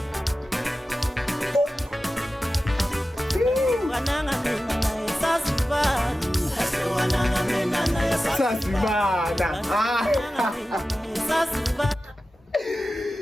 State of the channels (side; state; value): both; normal; correlation 0.94